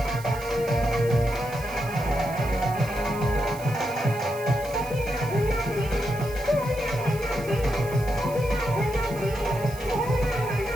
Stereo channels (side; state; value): right; noise; hiss, 17 dB below the sound